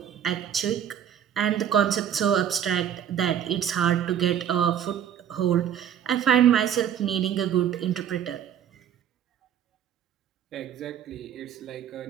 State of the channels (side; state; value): left; quieter; 9.5 dB